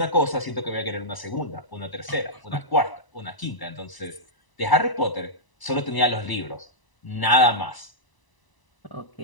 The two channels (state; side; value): late; right; 1.0 ms